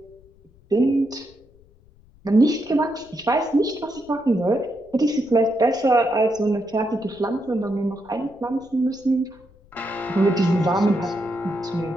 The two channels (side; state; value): left; noise; rumble, 28 dB below the sound